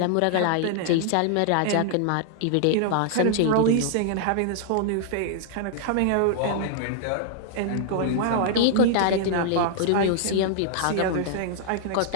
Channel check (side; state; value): both; different; correlation -0.01